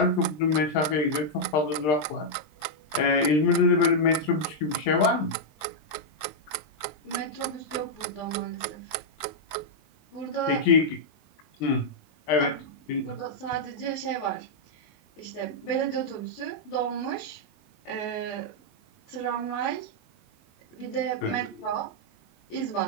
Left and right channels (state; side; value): late; right; 20 ms